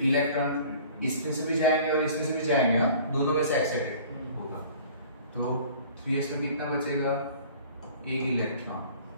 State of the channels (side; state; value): both; inverted; correlation -0.47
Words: इलेक्ट्रॉन इसमें से भी जाएंगे और इसमें से भी जाएंगे, दोनों में से एक्साइटेड होगा। तो 3s में कितना बचेगा 1 इलेक्ट्रॉन।